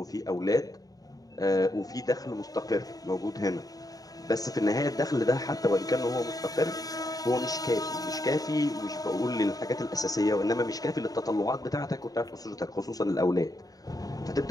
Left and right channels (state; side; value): late; right; 0.18 ms